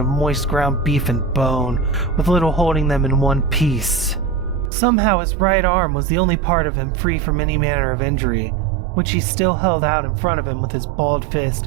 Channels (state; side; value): drops out; left; at 4.7 s